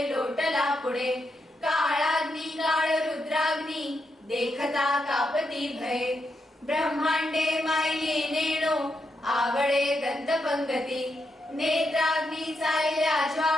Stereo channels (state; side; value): normal; both; correlation 0.83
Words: लोटला पुढे काळाग्नी काळ रुद्राग्नी देखता कापती भये ब्रह्मांडे मायली नेणो आवळे दंतपंगती नेत्राग्नी चालल्या